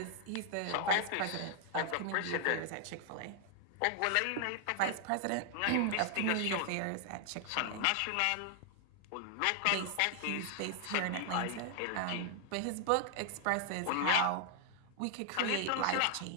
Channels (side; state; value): both; different; correlation 0.00